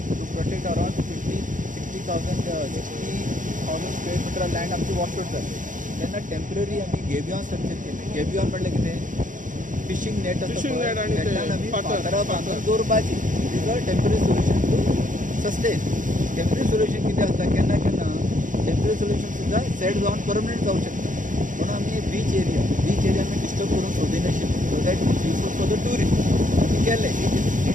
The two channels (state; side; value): late; left; 0.38 ms